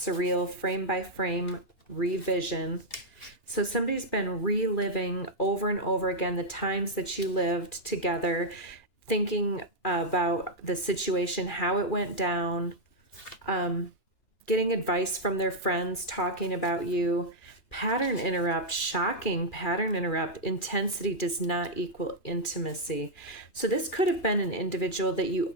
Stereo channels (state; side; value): late; right; 2.4 ms